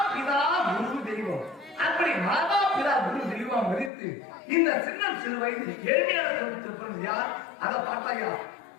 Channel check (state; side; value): drops out; right; at 3.9 s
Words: பிதா குரு தெய்வம் அப்படி மாதா பிதா குரு தெய்வம் மதித்து இந்த சிறு வயது ஏழ்மையான குடும்பத்தில் பிறந்த யார் அதை பார்த்தாயா